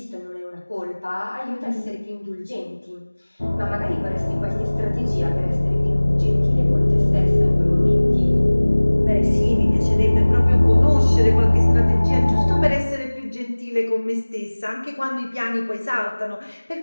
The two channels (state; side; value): inverted; both; correlation -1.00